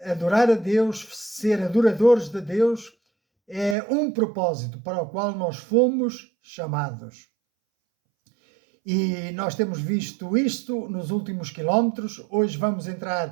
adorar a Deus, ser adoradores de Deus, é um propósito para o qual nós fomos chamados. E nós temos visto isto nos últimos quilómetros. Hoje vamos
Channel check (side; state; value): left; drops out; at 3.8 s